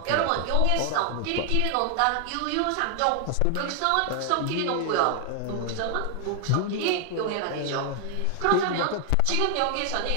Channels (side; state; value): both; different; correlation 0.00